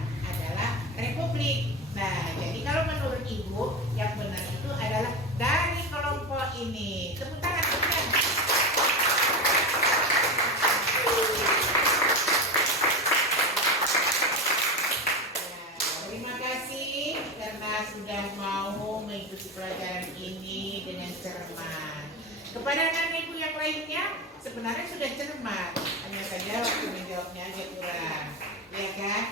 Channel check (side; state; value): both; normal; correlation 0.21